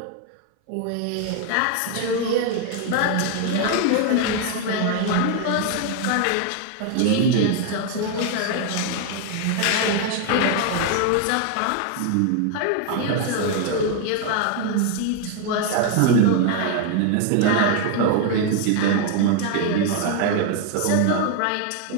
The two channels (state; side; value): different; both; correlation 0.01